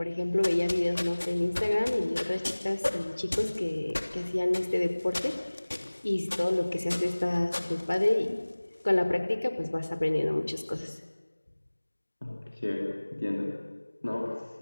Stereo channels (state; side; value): inverted; both; correlation -1.00